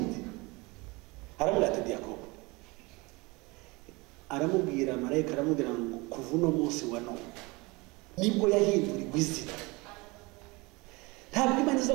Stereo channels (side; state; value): left; quieter; 24.9 dB